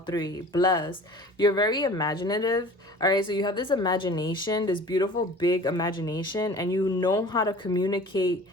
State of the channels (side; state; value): both; normal; correlation 0.43